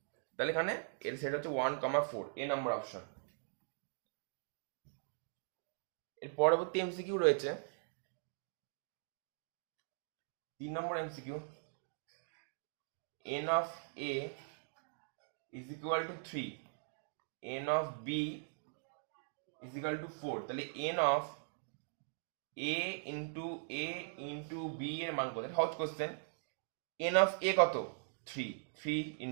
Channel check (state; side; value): silent; left; digital silence